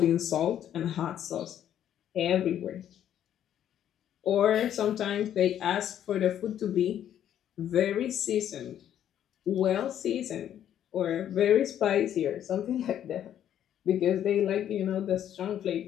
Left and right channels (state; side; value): quieter; right; 10.5 dB